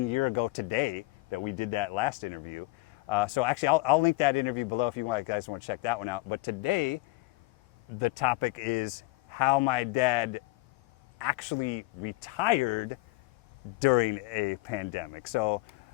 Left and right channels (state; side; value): quieter; right; 21.5 dB